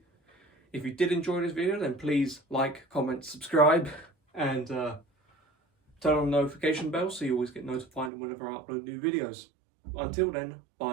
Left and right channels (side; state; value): left; drops out; at 8.1 s